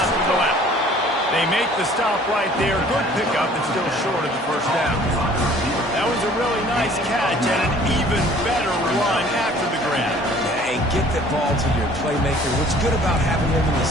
to the left. They make the stop right there. Good pickup, but still short of the first down. That was a really nice catch and an even better run after the grab. And get that ball to your playmaker. What's good about having him in the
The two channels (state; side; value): normal; both; correlation 0.53